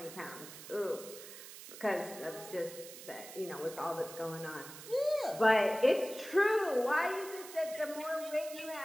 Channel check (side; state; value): right; noise; hiss, 14 dB below the sound